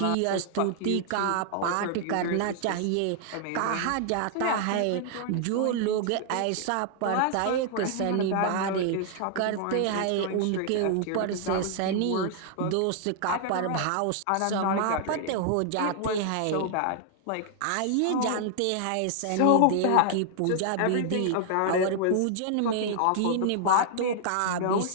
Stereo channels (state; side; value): different; both; correlation 0.00